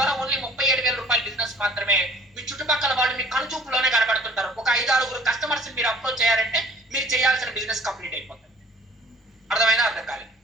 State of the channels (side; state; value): both; normal; correlation 0.53